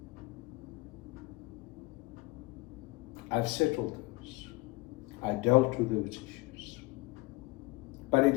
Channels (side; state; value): right; quieter; 22.0 dB